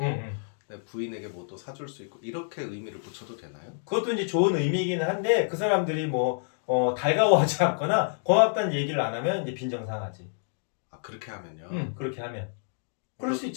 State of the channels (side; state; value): right; silent; digital silence